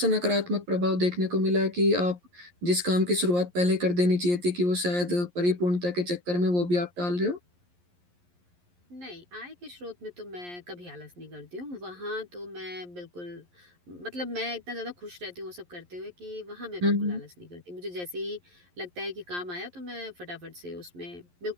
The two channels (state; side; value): late; left; 11 ms